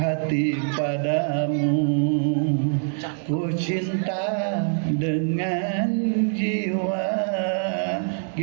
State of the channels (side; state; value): left; silent; digital silence